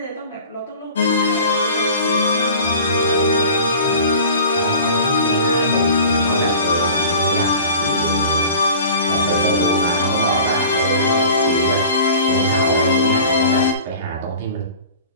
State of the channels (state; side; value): inverted; both; correlation -0.42